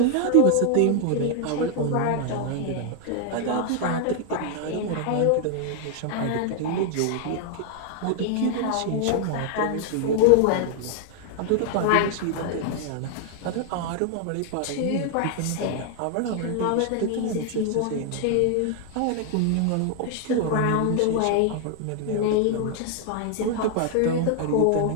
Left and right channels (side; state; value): both; different; correlation 0.00